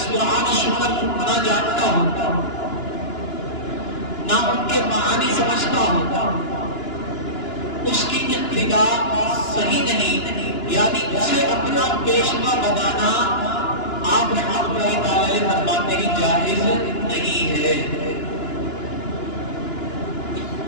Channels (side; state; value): right; late; 2.9 ms